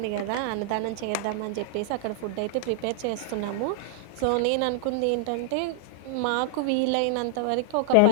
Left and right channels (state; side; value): different; both; correlation -0.01